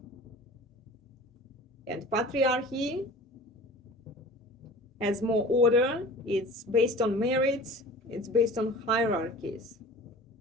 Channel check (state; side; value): normal; both; correlation 0.40